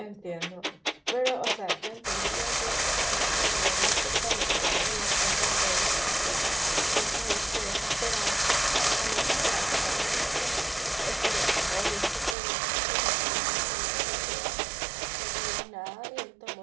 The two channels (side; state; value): left; drops out; at 12.4 s